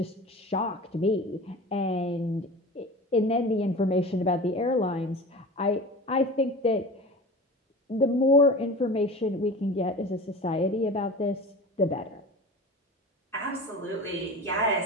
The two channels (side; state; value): both; normal; correlation 0.35